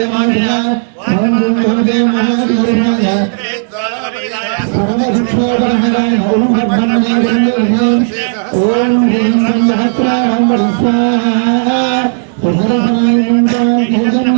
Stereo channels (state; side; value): silent; left; digital silence